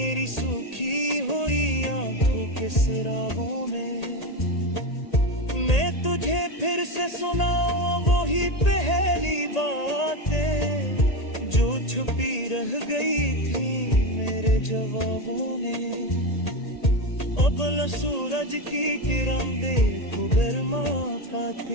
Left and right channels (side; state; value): right; late; 1.8 ms